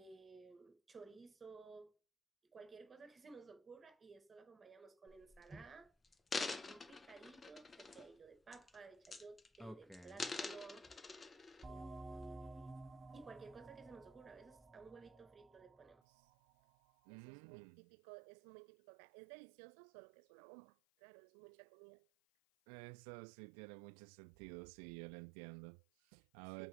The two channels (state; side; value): drops out; left; at 16.0 s